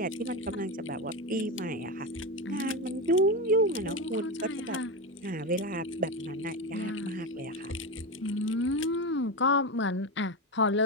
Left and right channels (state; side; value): normal; both; correlation 0.16